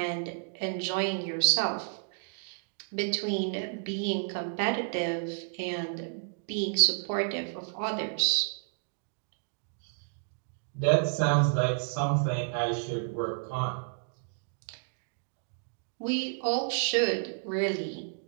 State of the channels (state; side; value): silent; left; digital silence